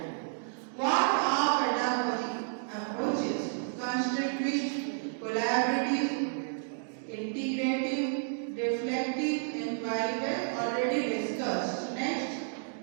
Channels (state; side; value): silent; left; digital silence